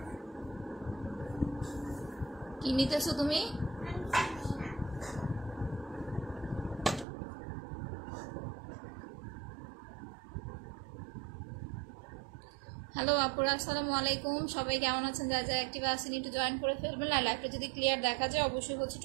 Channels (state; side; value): drops out; left; at 7.1 s